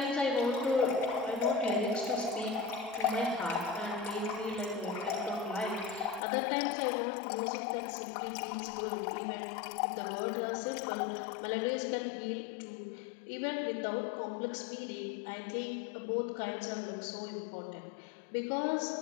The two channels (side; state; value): right; drops out; at 6.2 s